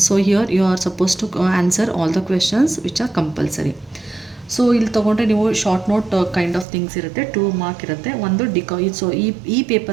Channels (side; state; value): left; drops out; at 6.7 s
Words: So here you are suppose to answer all the questions which are compulsory. So ಇಲ್ಲಿ ತೊಗೊಂಡ್ರೆ ನೀವು short note kind of things ಇರುತ್ತೆ, 2 mark ಇರುತ್ತೆ. ಒಂದು ಸೊ ಈ